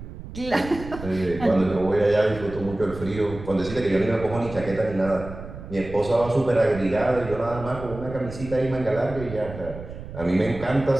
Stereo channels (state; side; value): noise; right; rumble, 12 dB below the sound